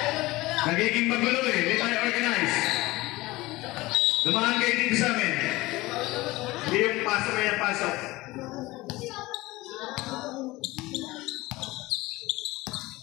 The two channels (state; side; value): quieter; right; 20.0 dB